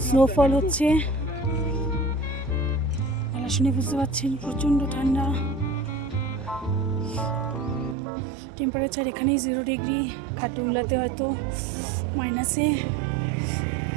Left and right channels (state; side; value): drops out; left; at 8.0 s